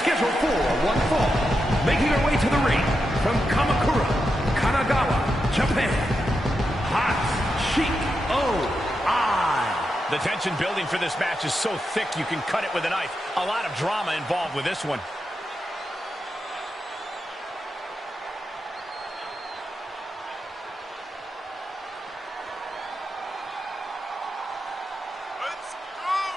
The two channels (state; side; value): normal; both; correlation 0.87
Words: for one fall. Making her way to the ring from Kamakura, Kanagawa, Japan, Hoshino. The tension building for this match is so thick you can cut it with a knife. A lot of drama involved with this one.